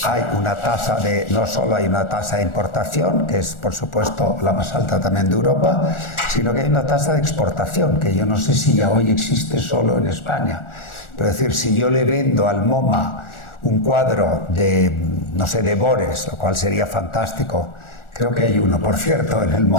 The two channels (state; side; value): late; right; 1.4 ms